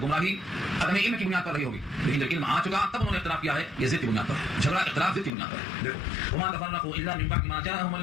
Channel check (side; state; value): right; drops out; at 5.3 s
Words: گمراہی عدم علم کی بنیاد پر رہی ہوگی. لیکن جب علم آ چکا تب انہوں نے اختلاف کیا ہے. یہ ضد کی بنیاد پر ہے، جھگڑا اختلاف ضد کی بنیاد پر ہے. دیکھو وما تفرقوا الا من بعد ما جاءهم